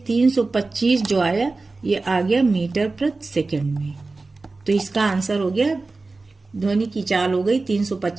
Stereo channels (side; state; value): left; quieter; 3.6 dB